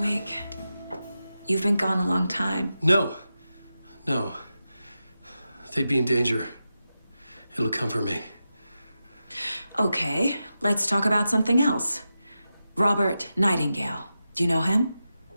You've been gone a long time. No. No. They'd be in danger. It'll come for me. Okay, let's talk about something else. Robert Nightingale. Do you know him?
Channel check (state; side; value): inverted; both; correlation -0.91